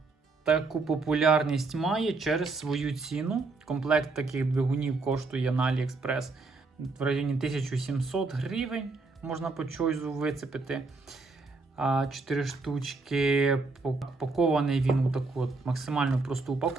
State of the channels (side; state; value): left; quieter; 3.8 dB